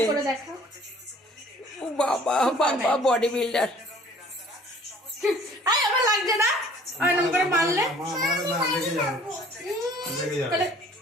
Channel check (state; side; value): normal; both; correlation 0.52